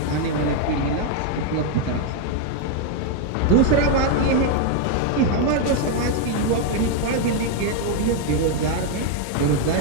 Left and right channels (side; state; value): both; different; correlation 0.01